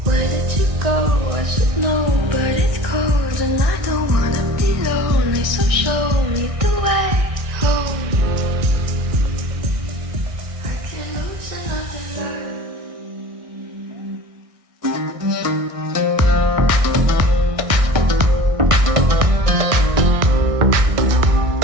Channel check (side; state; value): left; late; 1.6 ms